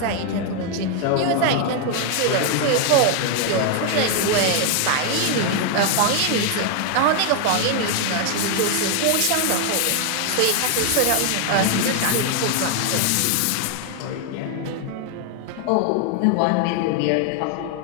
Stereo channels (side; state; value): both; different; correlation 0.00